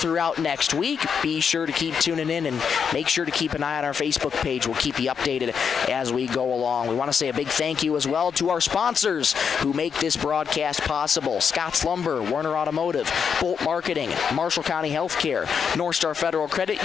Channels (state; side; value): quieter; right; 6.8 dB